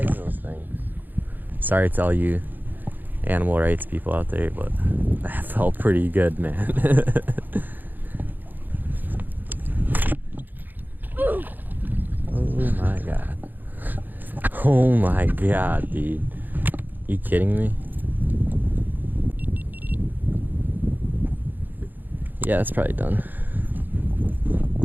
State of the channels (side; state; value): left; late; 0.088 ms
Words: those things. Sorry to all you animal rights people out there, but that felt pretty good, man. Oh my god, dude. You kidding me? Yeah, that's probably done.